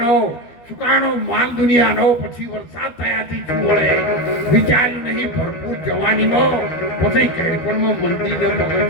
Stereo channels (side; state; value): right; late; 12 ms